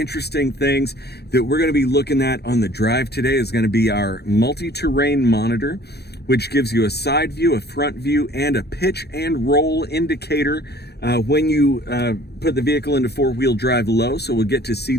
things that we're going to be looking at on the drive today is going to be our multi-terrain monitor, which gives you a side view, a front view, and a pitch and roll indicator when you put the vehicle into four-wheel drive low. So we'll get to see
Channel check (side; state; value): right; late; 0.47 ms